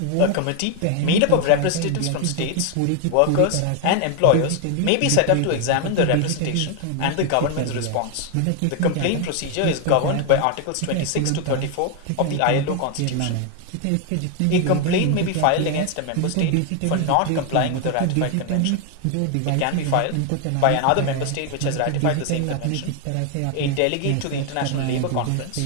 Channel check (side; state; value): both; different; correlation 0.01